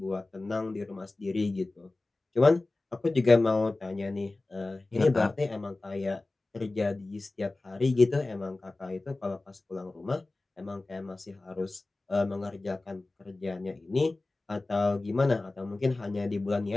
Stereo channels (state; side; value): quieter; right; 3.1 dB